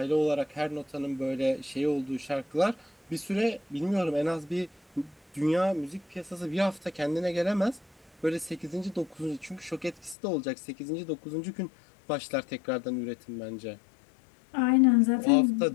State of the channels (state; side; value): drops out; right; at 10.2 s